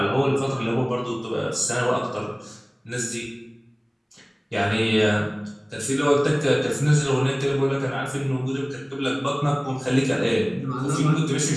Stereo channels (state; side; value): identical; both; correlation 1.00